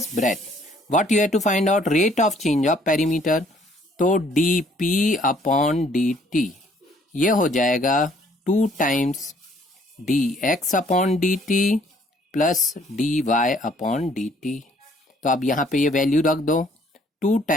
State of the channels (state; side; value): normal; both; correlation 0.62